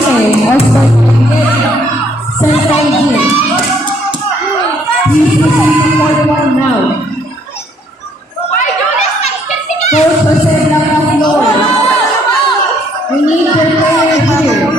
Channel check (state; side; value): normal; both; correlation 0.66